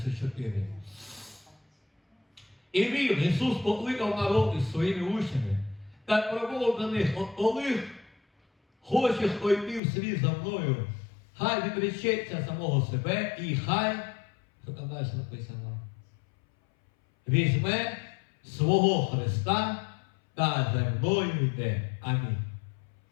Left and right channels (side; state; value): right; drops out; at 9.8 s